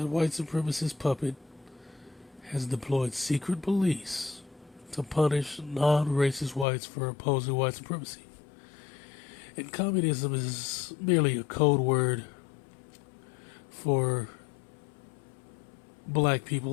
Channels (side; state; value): right; drops out; at 6.7 s